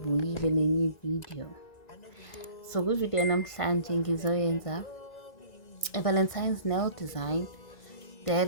nenye video. So kwivideo namhlanje ngizoyenza Valentine's nail design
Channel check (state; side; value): late; right; 1.6 ms